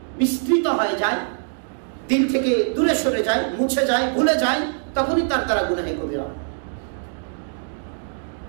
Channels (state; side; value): silent; left; digital silence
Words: বিস্তৃত হয়ে যায়, দিল থেকে দূরে সরে যায়, মুছে যায়, ভুলে যায়, তখনই তার দ্বারা গুনাহে কবিরা হয়।